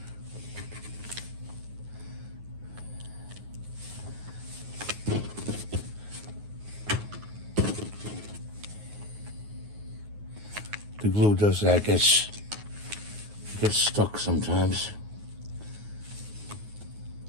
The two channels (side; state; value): left; late; 9.5 ms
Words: The glue does that, gets stuck sometimes.